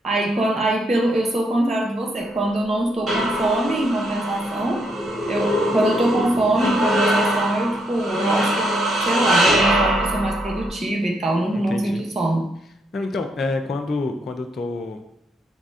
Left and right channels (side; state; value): both; normal; correlation 0.76